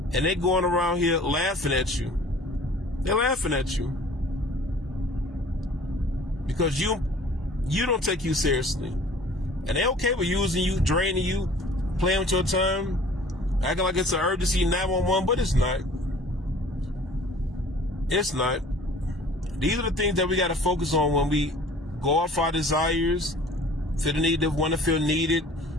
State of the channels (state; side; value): normal; both; correlation 0.48